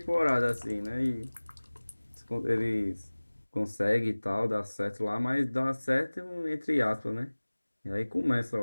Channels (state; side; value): inverted; both; correlation -1.00